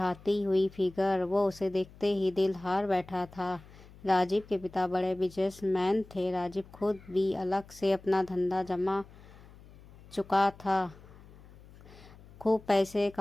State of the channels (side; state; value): left; noise; hum, 21 dB below the sound